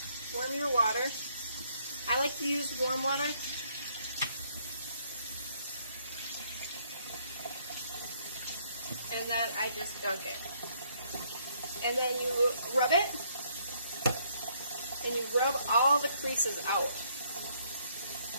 Warm your water. I like to use warm water. And then I just dunk it. And then you rub it, and you rub all the creases out.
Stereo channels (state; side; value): inverted; both; correlation -0.69